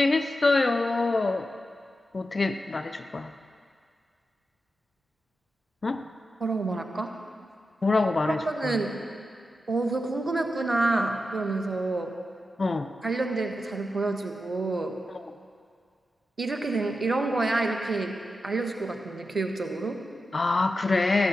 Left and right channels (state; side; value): normal; both; correlation 0.89